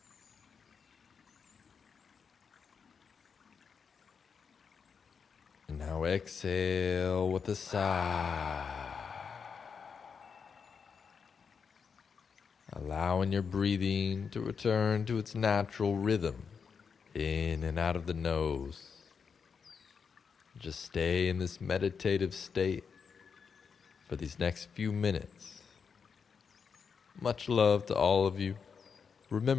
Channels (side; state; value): right; quieter; 6.1 dB